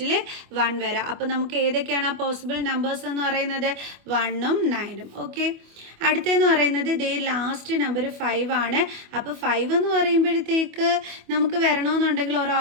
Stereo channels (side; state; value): left; late; 25 ms